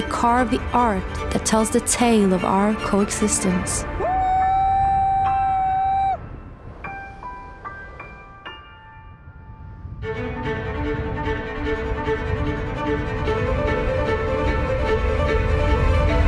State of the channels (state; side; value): identical; both; correlation 1.00